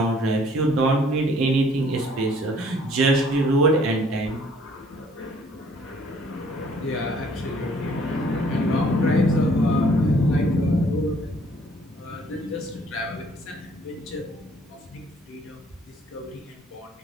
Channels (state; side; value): normal; both; correlation 0.59